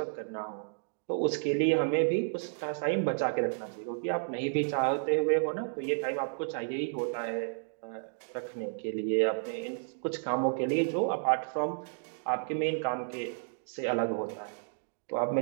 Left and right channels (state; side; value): silent; left; digital silence